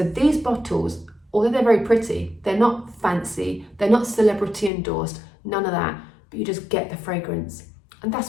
these bottles, although they're very pretty, they're not fancy, they're not celebrity endorsed, none of that, but you just get the fragrance. And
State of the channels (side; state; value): right; drops out; at 4.7 s